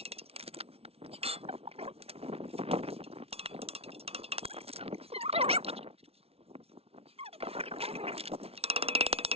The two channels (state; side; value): late; left; 0.29 ms